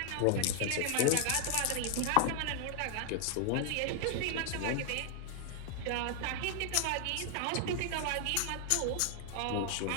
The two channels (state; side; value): different; both; correlation 0.00